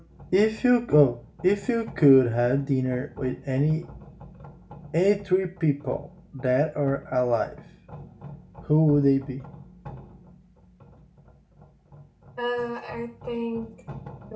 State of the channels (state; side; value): identical; both; correlation 1.00